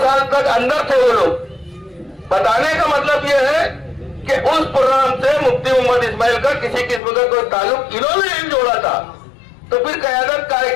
साल तक अंदर थे वो लोग। बताने का मतलब ये है कि उस प्रोग्राम से मुफ्ती मोहम्मद इस्माइल का किसी किस्म का कोई ताल्लुक इन्होंने नहीं जोड़ा था, तो फिर क़यादत काहे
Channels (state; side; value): drops out; right; at 7.0 s